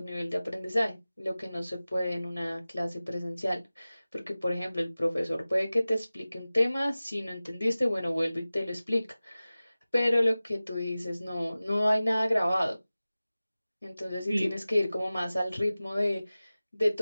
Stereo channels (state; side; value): inverted; both; correlation -0.97